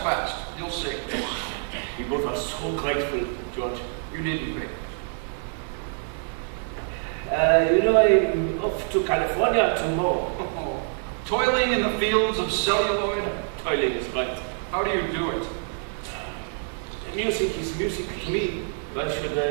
fast. You'll see. We both are so grateful, George. You needn't be. You know, I'm off to California tomorrow. Toiling in the fields of celluloid? Toiling is right. How do you do it? Music is music to me. Why should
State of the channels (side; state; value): left; silent; 61 dB below the other